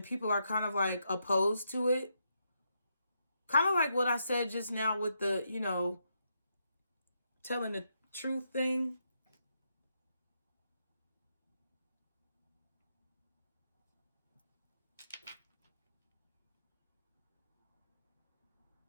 people are kind of like opposed to it. Kind of like what I said just now with the, you know, telling the truth thing.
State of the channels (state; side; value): inverted; both; correlation -0.80